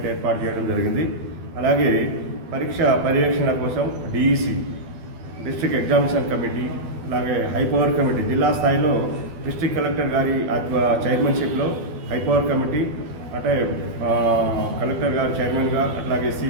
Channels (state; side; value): late; left; 12 ms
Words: ఏర్పాటు చేయడం జరిగింది. అలాగే పరీక్ష పర్యవేక్షణ కోసం డిఈసి, డిస్ట్రిక్ట్ ఎగ్జామినేషన్ కమిటీ, అలాగే హైపవర్ కమిటీ, జిల్లా స్థాయిలో డిస్ట్రిక్ట్ కలెక్టర్ గారి చైర్మన్షిప్లో హైపవర్ కమిటీ, అంటే కలెక్టర్ గారు చైర్మన్గా, అట్లాగే